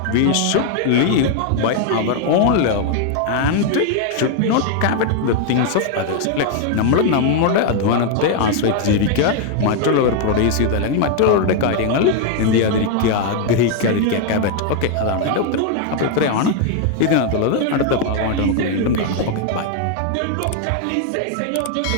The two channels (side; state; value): both; different; correlation 0.00